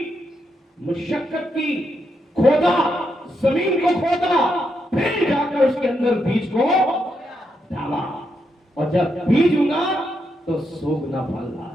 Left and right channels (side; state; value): both; normal; correlation 0.81